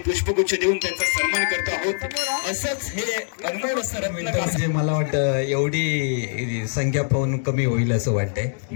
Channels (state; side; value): silent; right; digital silence